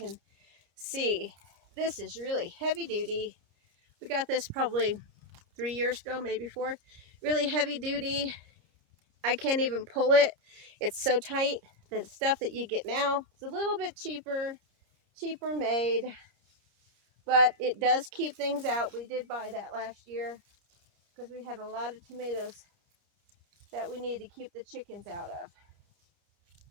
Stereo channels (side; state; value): left; late; 30 ms